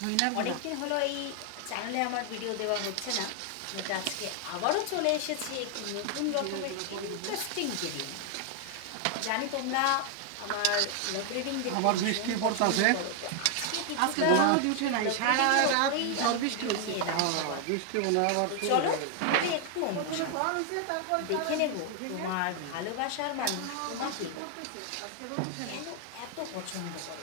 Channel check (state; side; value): different; both; correlation 0.00